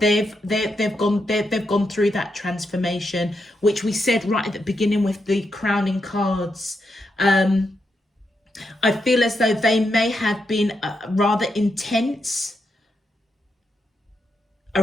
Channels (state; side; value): normal; both; correlation 0.83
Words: gone through that transformation, which we said right at the beginning with the crowning cards. I feel as though they may have been rather intense